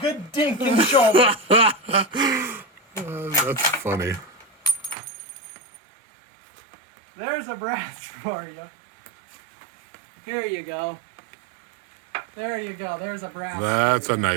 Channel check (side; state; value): left; drops out; at 5.0 s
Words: dink in the shoulder. That's funny. There's a brass for you. Here you go. There you go. There's a brass. That's a